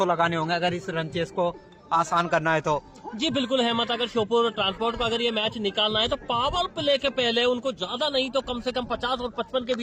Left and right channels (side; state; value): both; identical; correlation 1.00